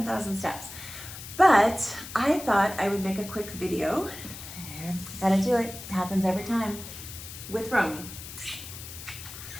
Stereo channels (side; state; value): left; noise; hiss, 12 dB below the sound